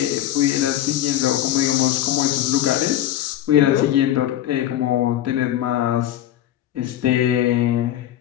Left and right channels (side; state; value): right; quieter; 12.2 dB